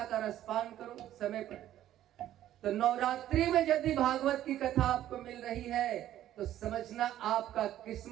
का रसपान करो, समय पर। तो नवरात्रि में यदि भागवत की कथा आपको मिल रही है तो समझना आपका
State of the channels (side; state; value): left; quieter; 12.5 dB